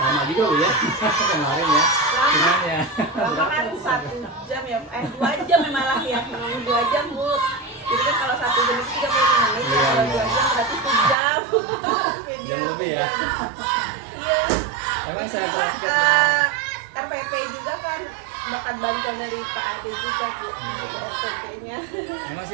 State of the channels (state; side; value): drops out; left; at 11.2 s